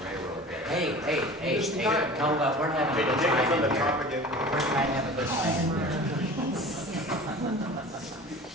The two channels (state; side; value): normal; both; correlation 0.39